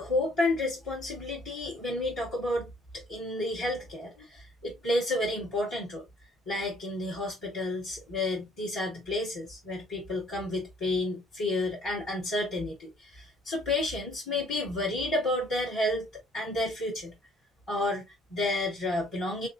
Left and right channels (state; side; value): normal; both; correlation 0.59